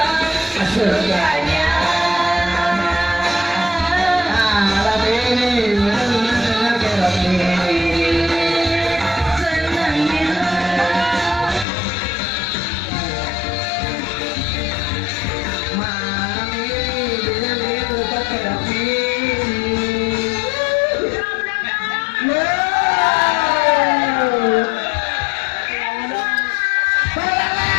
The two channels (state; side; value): drops out; right; at 11.7 s